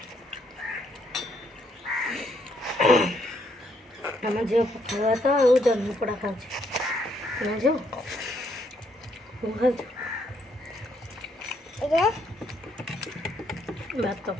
ଆମ ଝିଅ ପଖାଳ ଭାତ ଆଉ ଜହ୍ନି ପୋଡ଼ା ଖାଉଛି ନା ଝିଅ ମୁଁ ଖାଉଛୁ ଭାତ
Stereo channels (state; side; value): normal; both; correlation 0.72